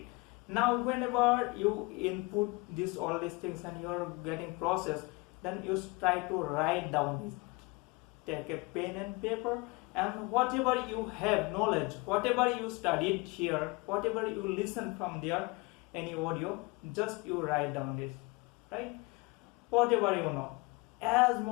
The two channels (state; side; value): quieter; right; 25.9 dB